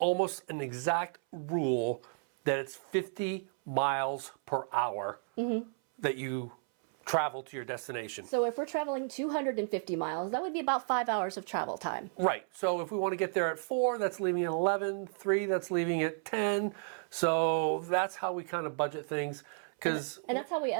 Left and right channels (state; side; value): silent; left; 56 dB below the other